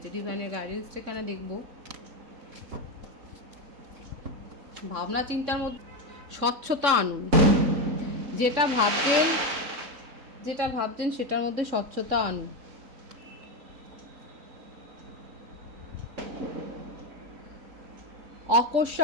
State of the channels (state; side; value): late; left; 3.6 ms